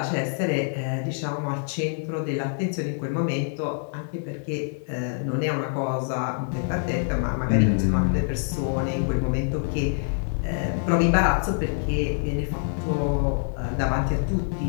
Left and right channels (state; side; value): silent; right; digital silence